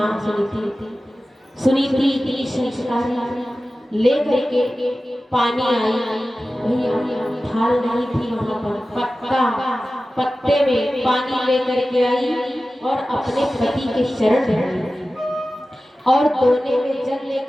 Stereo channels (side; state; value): both; normal; correlation 0.95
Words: सुनीति। सुनीति इतनी संस्कारी ले करके पानी आई भैया, थाल नहीं थी वहां पर, पत्ते में पानी ले करके आई और अपने पति के चरण धोए, और दोने में जल ले